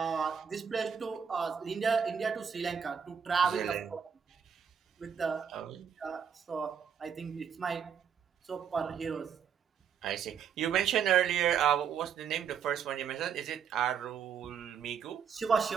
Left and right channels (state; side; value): quieter; left; 7.4 dB